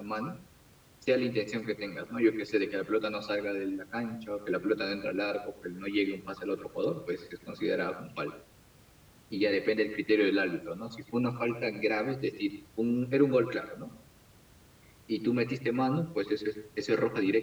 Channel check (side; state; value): both; identical; correlation 1.00